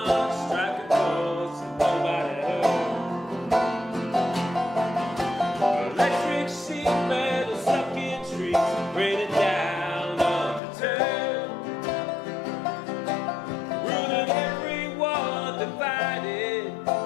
striking chords that nobody heard. Electric sheet metal stuck in trees, raining down undeterred. Ruling everyone divided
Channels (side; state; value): right; drops out; at 10.6 s